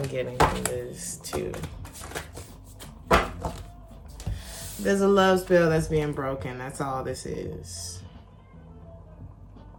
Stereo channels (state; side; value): identical; both; correlation 1.00